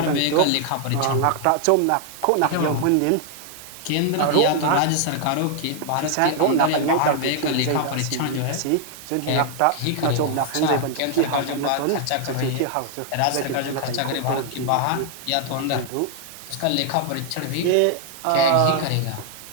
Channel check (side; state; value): both; different; correlation 0.00